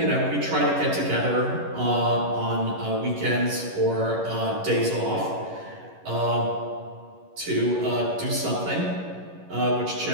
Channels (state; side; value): late; left; 11 ms